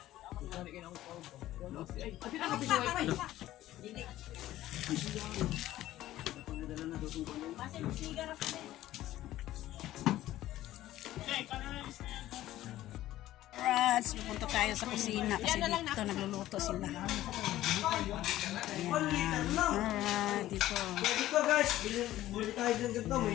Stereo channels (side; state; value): right; quieter; 14.5 dB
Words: Alright, pupunta tayo sa kusina kasi dito nagluluto sila. Alright, dito. Dito guys, bili tayo din ganito